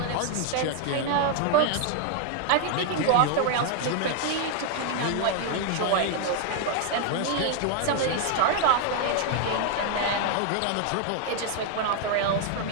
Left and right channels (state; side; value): different; both; correlation 0.00